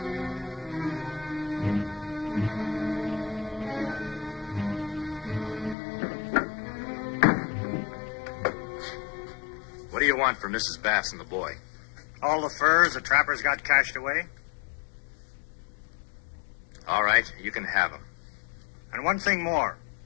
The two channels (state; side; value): drops out; right; at 5.8 s